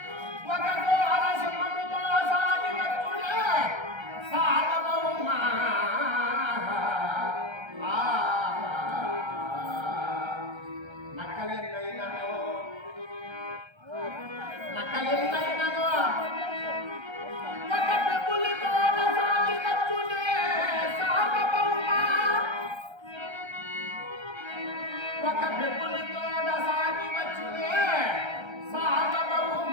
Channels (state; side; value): late; left; 1.3 ms